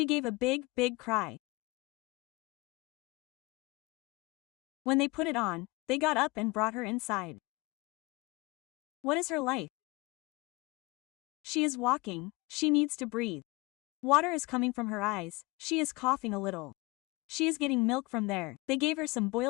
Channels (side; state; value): right; quieter; 24.1 dB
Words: gave a big, big cry. When they put it on, they got up and brought her inside. What is her life? She is walking, she needs to breathe. Water is coming from her eyes, she is coughing a little. She is getting milk from there. They gave her some